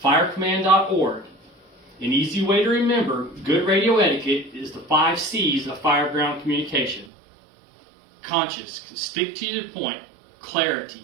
firecommand.org, an easy way to remember good radio etiquette is the 5 C's of fireground communication. Conscious, stick to the point, clarity,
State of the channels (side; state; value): left; drops out; at 7.1 s